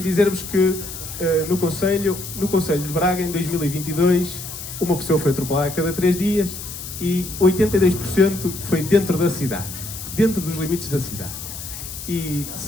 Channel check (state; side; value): noise; left; hiss, 10 dB below the sound